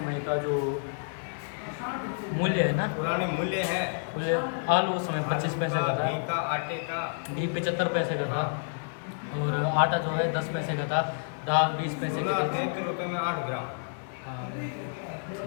का जो मूल्य है ना, पुराने मूल्य है। मूल्य आलू उस समय 25 पैसे का था, घी का, आटे का, घी 75 पैसे का था, और आटा जो है 10 पैसे का था, दाल 20 पैसे की थी। 33 रुपये में 8 ग्राम। हाँ।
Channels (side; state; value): right; silent; digital silence